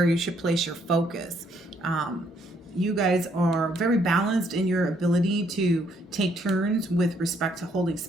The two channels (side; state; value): both; normal; correlation 0.69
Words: you should place your focus. You guys are very balanced in your ability to take turns with respect to holding